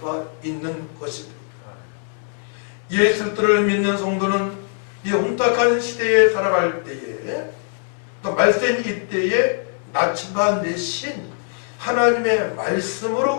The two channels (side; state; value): right; silent; 64 dB below the other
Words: 있는 것입니다. 예수 그리스도를 믿는 성도는 이 혼탁한 시대에 살아갈 때에 또 말세인 이때에 나침반 대신 하나님의